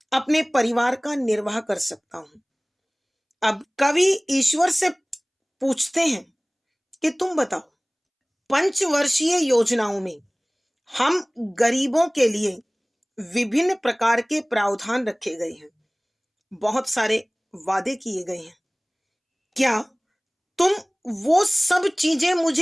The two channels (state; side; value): identical; both; correlation 1.00